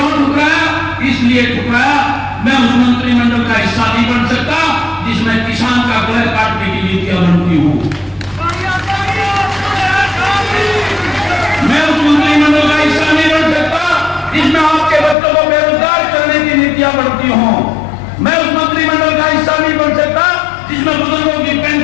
ठुकराया? इसलिए ठुकराया मैं उस मंत्रिमंडल का हिस्सा नहीं बन सकता जिसमें किसान का गला काटने की नीतियां बनती हूं। मैं उस मंत्रिमंडल का हिस्सा नहीं बन सकता जिसमें आपके बच्चों को बेरोजगार करने की नीतियां बनती हों। मैं उस मंत्रिमंडल का हिस्सा नहीं बन सकता जिसमें बुजुर्गों की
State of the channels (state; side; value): drops out; right; at 15.2 s